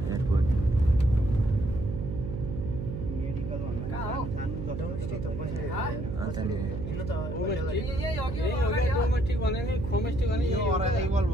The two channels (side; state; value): right; noise; hum, 5 dB below the sound